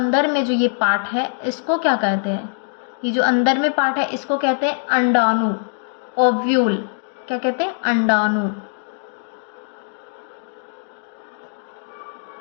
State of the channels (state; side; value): silent; right; digital silence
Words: में जो ये पार्ट है, इसको क्या कहते हैं? ये जो अंदर में पार्ट है इसको कहते हैं अंडाणु, ओव्यूल। क्या कहते हैं? अंडाणु।